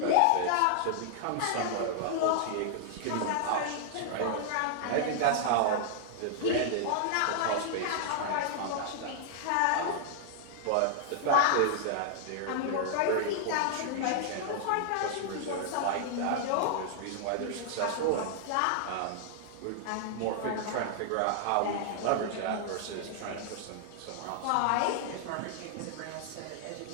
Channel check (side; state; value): both; different; correlation -0.01